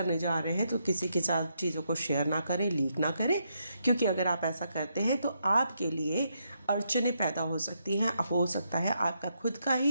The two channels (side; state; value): both; inverted; correlation -0.79